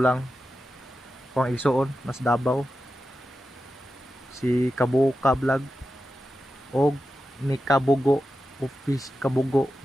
ko ang igsuon mas Davao si Kabuka Vlog og ni Kabugo Office Kabugo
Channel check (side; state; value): both; normal; correlation 0.91